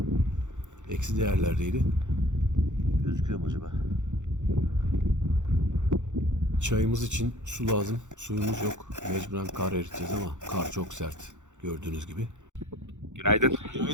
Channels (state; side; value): late; left; 0.85 ms